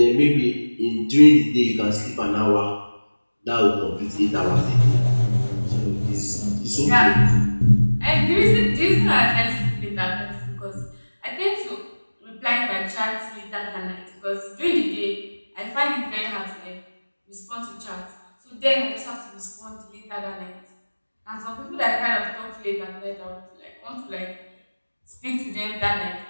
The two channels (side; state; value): both; inverted; correlation -1.00